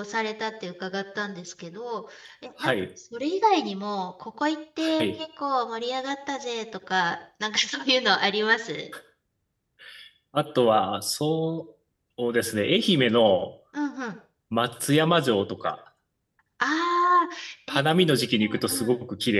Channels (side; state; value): both; identical; correlation 1.00